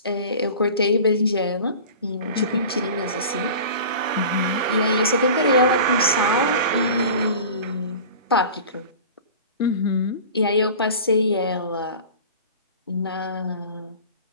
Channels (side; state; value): both; inverted; correlation -0.38